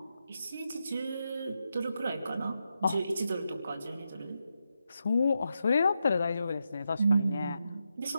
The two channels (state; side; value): inverted; both; correlation -0.86